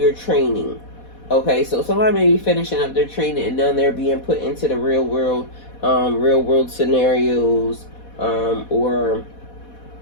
training. Okay, so somebody may be finishing up their training and then they're being put into the real world scenarios, or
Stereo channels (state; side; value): late; right; 4.1 ms